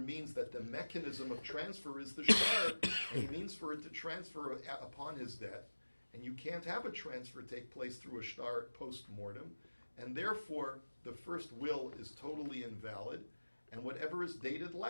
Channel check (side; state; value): both; inverted; correlation -1.00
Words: that the mechanism of transfer is the shtar, and he means for it to transfer upon his death, and you can't have a transfer take place through a shtar post-mortem, and therefore the first will is totally invalid, and whatever is dated